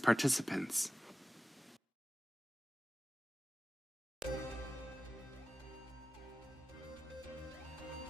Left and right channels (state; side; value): normal; both; correlation 0.94